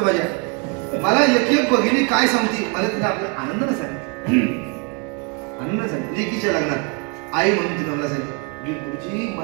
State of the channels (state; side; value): quieter; left; 33.8 dB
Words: माझ्या मला एक भगिनी काय सांगते, मला तिला आपल्या आनंदानं सांगितलं, आनंदानं सांगितलं. लेकीच्या लग्नात आई म्हणून तिने मला सांगितलं, गुरुजी